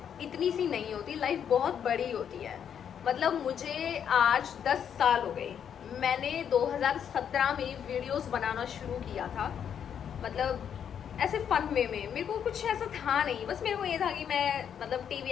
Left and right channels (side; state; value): right; quieter; 8.4 dB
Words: इतनी सी नहीं होती, लाइफ बहुत बड़ी होती है। मतलब मुझे आज 10 साल हो गए, मैंने 2017 में वीडियोस बनाना शुरू किया था। मतलब ऐसे फन वे में, मेरे को कुछ ऐसा था नहीं, बस मेरे को ये था कि मैं मतलब टीवी